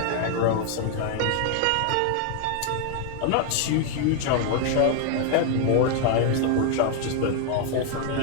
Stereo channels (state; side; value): different; both; correlation 0.00